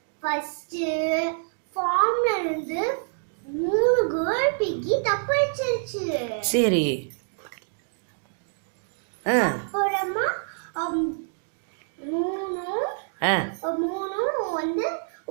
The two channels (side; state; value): left; silent; digital silence